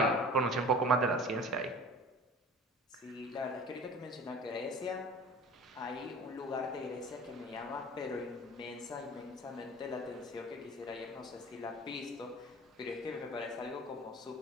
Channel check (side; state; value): both; normal; correlation 0.42